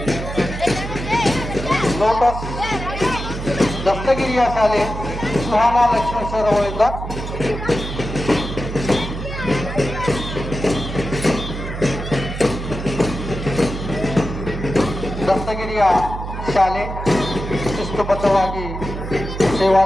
ಲೋಟಸ್ ದಸ್ತಗಿರಿಯ ಶಾಲೆ ಸುಹಾನಾ ಲಕ್ಷ್ಮೇಶ್ವರ ಅವರಿಂದ ದಸ್ತಗಿರಿಯ ಶಾಲೆ ಶಿಸ್ತುಬದ್ಧವಾಗಿ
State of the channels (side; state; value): right; noise; hum, 7 dB below the sound